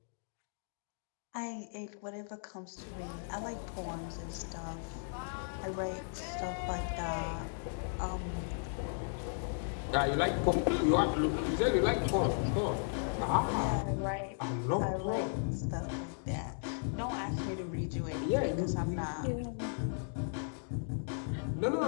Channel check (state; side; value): silent; right; digital silence